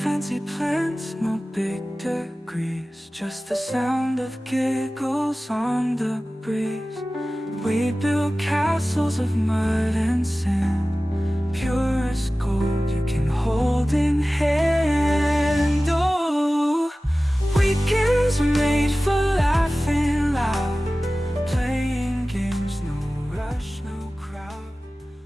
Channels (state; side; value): normal; both; correlation 0.97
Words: Fancy plans, no big degrees, just the sound of giggles on the breeze. We build castles of mud and sand, pure as gold.